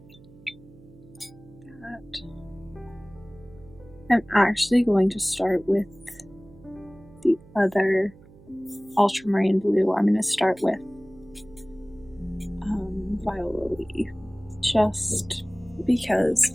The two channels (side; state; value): right; noise; hum, 23 dB below the sound